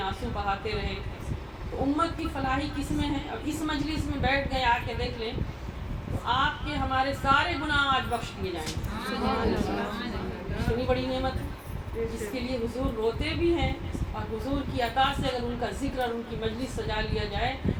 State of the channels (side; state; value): both; identical; correlation 1.00